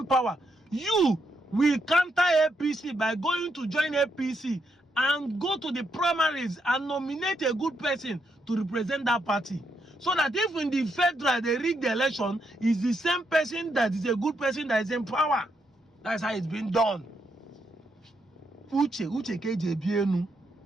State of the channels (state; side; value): normal; both; correlation 0.79